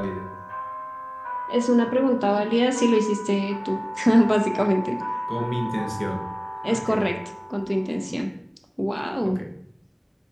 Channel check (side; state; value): both; identical; correlation 1.00